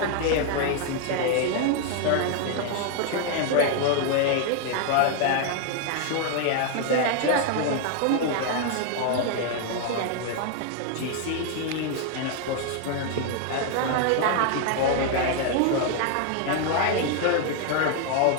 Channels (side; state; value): both; different; correlation 0.00